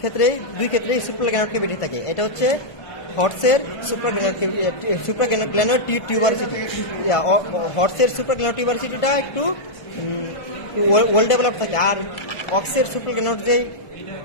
দুই ক্ষেত্রেই সুপ্রাগ্ল্যানোড ক্যাভিটি থাকে। এটা হচ্ছে হর্সের সুপ্রাগ্ল্যানোড টিউবারসিটি। হর্সের সুপ্রাগ্ল্যানোড টিউবারসিটিটা একটু ওয়েল ডেভেলপ থাকে, আর অক্সের সুপ্রাগ্ল্যানোড যে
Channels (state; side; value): late; right; 1.5 ms